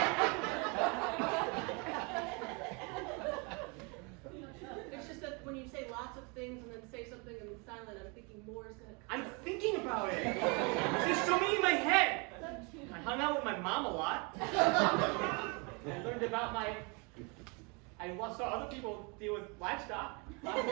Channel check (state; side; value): quieter; left; 31.5 dB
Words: It's just that when you say lots of things and then say something and then silent, I'm thinking more is gonna come. I'm thinking about it. There's so many in my head. I hung out with my mom a lot. I learned about I saw other people deal with livestock.